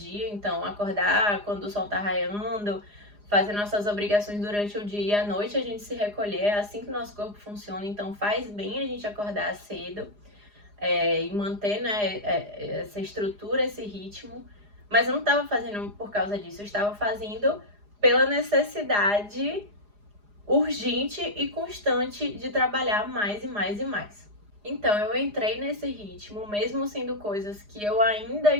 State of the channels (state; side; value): late; left; 4.9 ms